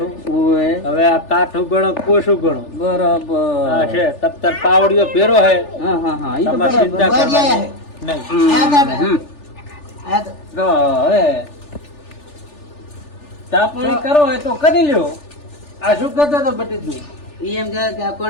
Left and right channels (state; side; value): late; right; 3.4 ms